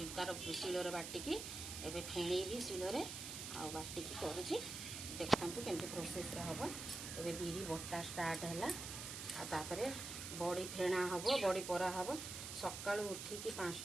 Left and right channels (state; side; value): noise; right; hiss, 7 dB below the sound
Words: ତାର ଶିଳରେ ବାଟିକି ଏବେ ଫେଣେଇବି ଶିଳରେ ଆଉ ବାଟିକି କରୁଛି। ଦେଖନ୍ତୁ କେମିତି ପ୍ରୋସେସରେ ହେବ। ଏବେ ବିରି ବଟା ଷ୍ଟାର୍ଟ ହେଲା ଆଉ ତାପରେ ବଡ଼ି ଫେଣା ହେବ, ବଡ଼ି ପରା ହେବ। ସକାଳୁ ଉଠିକି